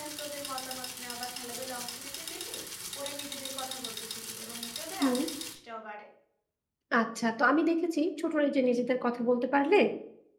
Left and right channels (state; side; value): identical; both; correlation 1.00